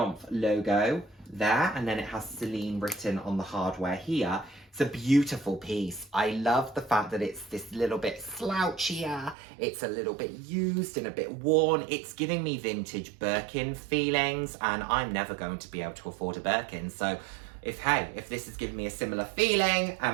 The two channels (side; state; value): left; drops out; at 9.3 s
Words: logo there, and then it has Celine written on the hardware here. It's a beautiful piece. I love the fact that it's this little bit slouchier, it's a little bit used and a bit worn. It's giving me vintage Birkin feelings, and I'm never going to be able to afford a Birkin, so if this is giving me a similar feeling